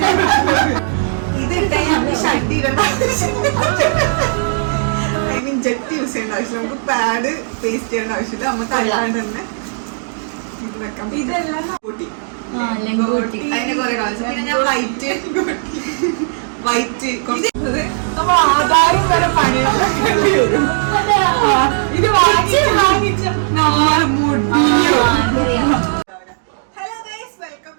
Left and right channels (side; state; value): left; silent; digital silence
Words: ഇതിട്ടേ നമുക്ക് ഷഡ് ഇടേണ്ട ഐ മീൻ ജെറ്റ് യൂസ് ചെയ്യേണ്ട ആവശ്യം, നമുക്ക് പാഡ് പേസ്റ്റ് ചെയ്യേണ്ട ആവശ്യമില്ല, നമുക്ക് അല്ലാണ്ട് തന്നെ ഇത് വെക്കാം. ഇതെല്ലാം അതിന്റെ കുറെ കാണിച്ചു. പിന്നെ ഞാൻ വൈറ്റ് നമ്മൾ ആധാരം വരെ പണിയാൻ വരും. ഇത് വാങ്ങിച്ച hello guys, welcome